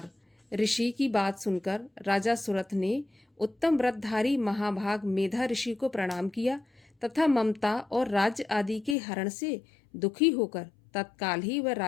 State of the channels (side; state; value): right; drops out; at 9.0 s